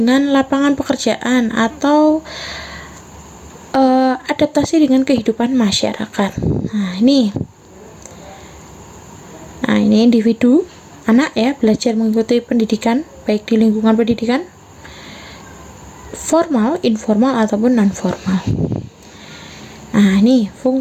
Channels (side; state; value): both; identical; correlation 1.00